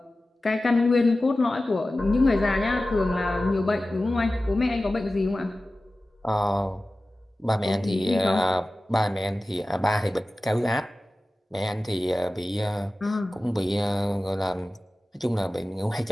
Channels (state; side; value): normal; both; correlation 0.96